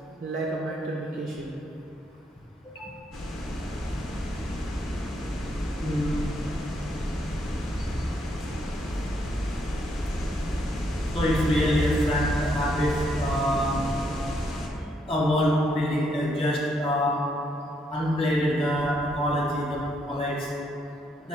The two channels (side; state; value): both; normal; correlation 0.75